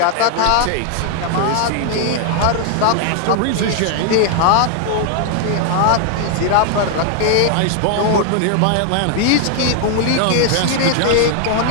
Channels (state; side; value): different; both; correlation 0.00